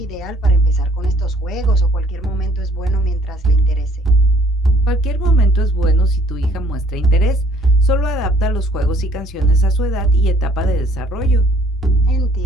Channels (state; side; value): normal; both; correlation 0.59